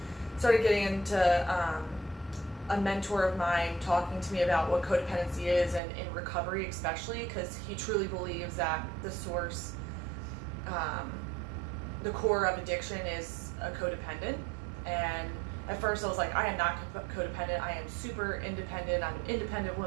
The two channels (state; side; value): drops out; left; at 5.8 s